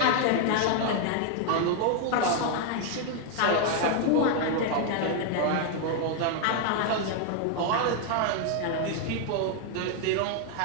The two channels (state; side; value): different; both; correlation 0.00